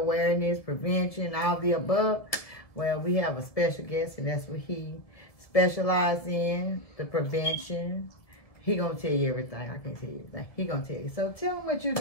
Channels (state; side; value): late; right; 1.7 ms